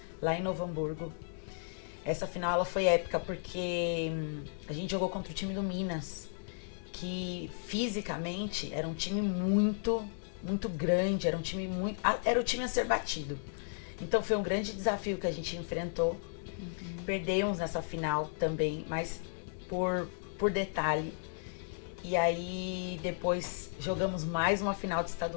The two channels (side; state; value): right; silent; digital silence